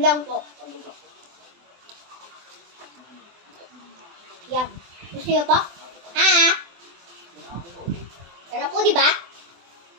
po. Yup. Gusto niyo pa? Ha?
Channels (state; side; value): late; left; 23 ms